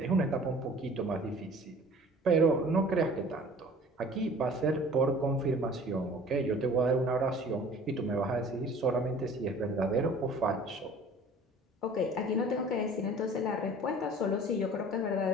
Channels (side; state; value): both; normal; correlation 0.47